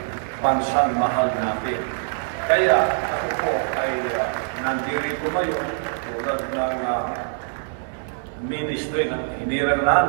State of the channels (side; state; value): left; silent; digital silence